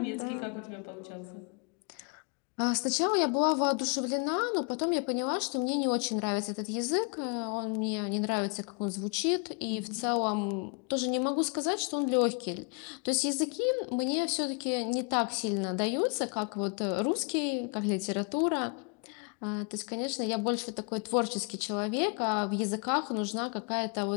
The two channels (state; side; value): quieter; right; 36.1 dB